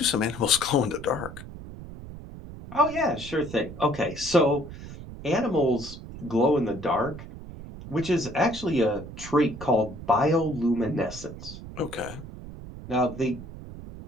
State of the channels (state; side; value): noise; right; rumble, 13 dB below the sound